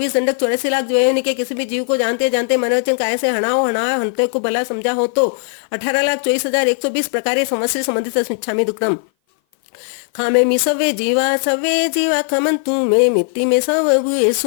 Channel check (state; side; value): silent; right; 58 dB below the other